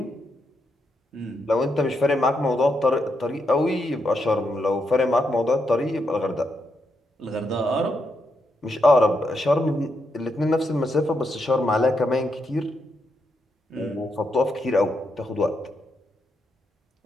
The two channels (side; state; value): both; normal; correlation 0.81